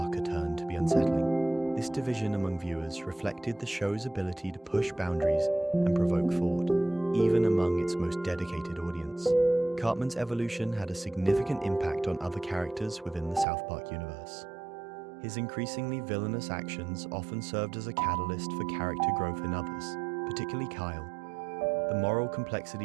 turn to be unsettling. This division among viewers reflected the show's ability to push boundaries and provoke thought, even among its most dedicated audience. Cartman's evolution had a significant impact on other characters within the South Park universe. His increasingly villainous actions often served as a catalyst for character growth in others, particularly Kyle. The moral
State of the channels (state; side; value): drops out; left; at 13.5 s